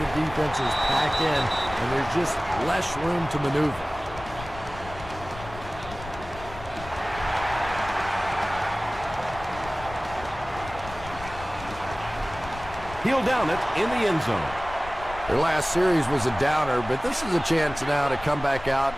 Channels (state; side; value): noise; left; rumble, 14 dB below the sound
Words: defense is packed in and there's just less room to maneuver. He'll down it in the end zone. Their last series was a downer, but this is a chance now to come back out